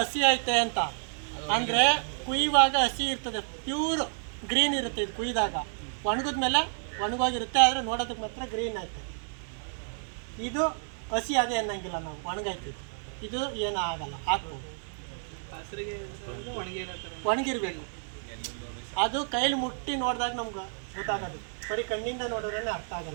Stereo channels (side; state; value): left; silent; digital silence